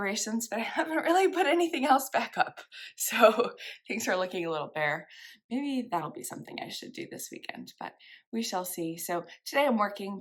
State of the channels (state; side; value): identical; both; correlation 1.00